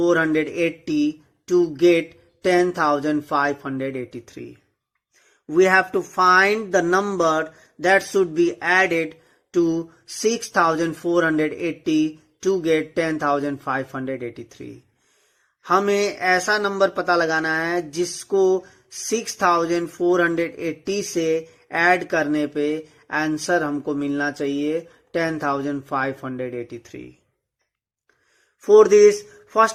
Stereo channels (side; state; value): both; identical; correlation 1.00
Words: to get 10583? We have to find the number that should be added to 6480 to get 10583. हमें ऐसा number पता लगाना है जिसको 6480 से add करने पे answer हमको मिलना चाहिए 10583. For this,